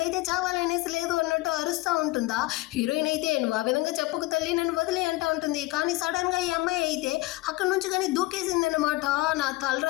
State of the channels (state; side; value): quieter; right; 19.8 dB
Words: చావాలనేసి లేదు అన్నట్టు అరుస్తూ ఉంటుందా. హీరోయిన్ అయితే నువ్వు ఆ విధంగా చెప్పుకు తల్లి నన్ను వదిలే అంటా ఉంటుంది. కానీ సడన్ గా ఈ అమ్మాయి అయితే అక్కడ నుంచి కానీ దూకేసింది అనమాట. నా